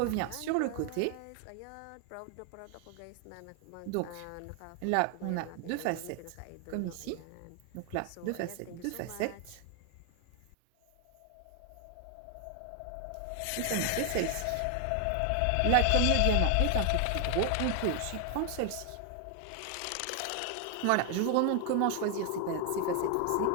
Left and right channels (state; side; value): different; both; correlation 0.00